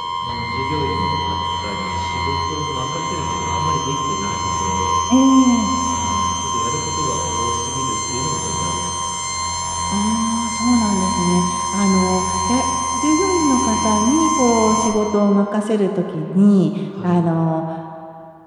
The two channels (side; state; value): both; identical; correlation 1.00